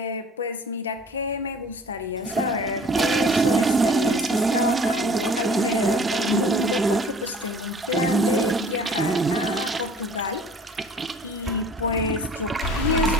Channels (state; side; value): normal; both; correlation 0.48